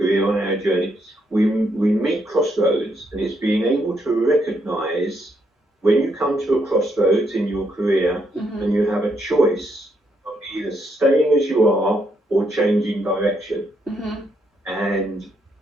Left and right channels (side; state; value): both; normal; correlation 0.76